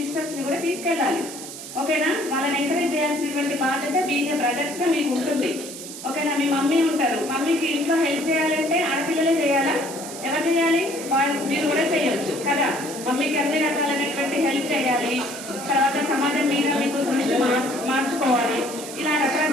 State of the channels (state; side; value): noise; right; hiss, 11 dB below the sound